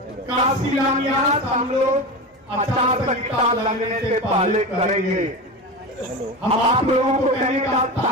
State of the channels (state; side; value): normal; both; correlation 0.24